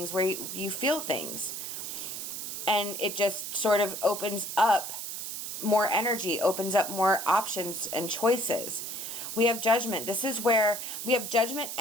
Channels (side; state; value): right; noise; hiss, 6 dB below the sound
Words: where you feel things. And it just sort of opens up more energy, opens up more options and choices. We have Judgment. This is where we have Judgment